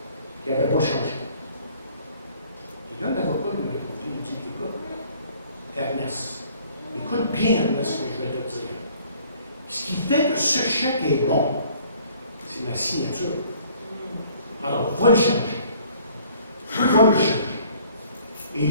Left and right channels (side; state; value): both; inverted; correlation -0.57